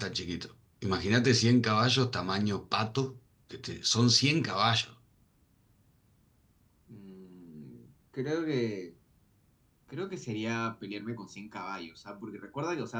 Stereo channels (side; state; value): both; identical; correlation 1.00